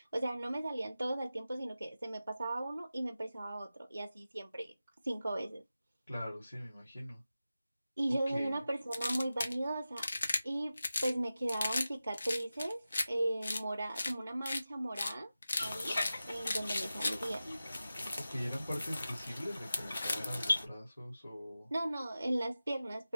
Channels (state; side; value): inverted; both; correlation -0.94